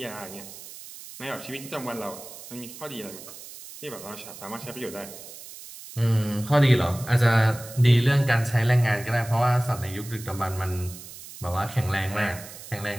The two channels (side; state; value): right; noise; hiss, 15 dB below the sound